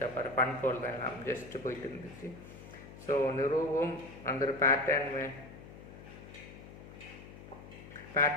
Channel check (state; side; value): noise; left; hum, 16 dB below the sound